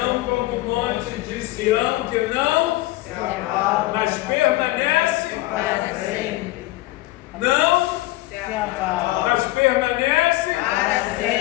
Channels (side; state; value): right; quieter; 18.6 dB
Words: como o monte de Sião, que não Se abala mas permanece, para sempre. não, Se abala mas permanece. para